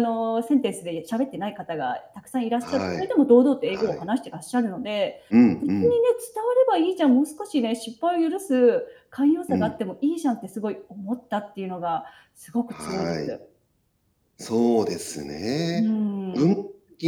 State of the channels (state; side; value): identical; both; correlation 1.00